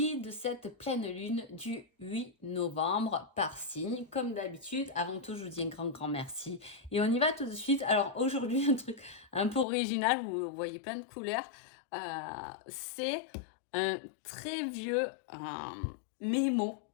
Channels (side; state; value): right; drops out; at 9.7 s